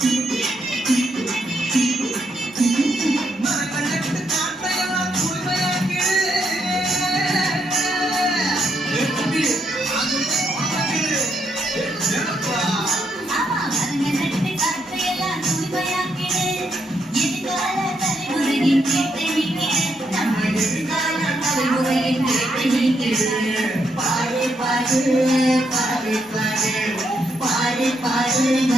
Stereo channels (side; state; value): both; normal; correlation 0.78